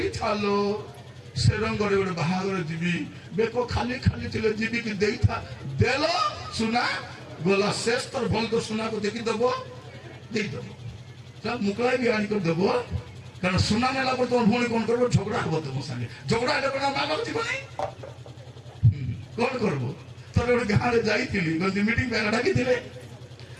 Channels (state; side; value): identical; both; correlation 1.00